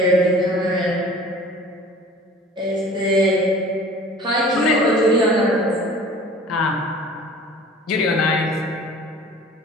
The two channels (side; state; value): both; normal; correlation 0.46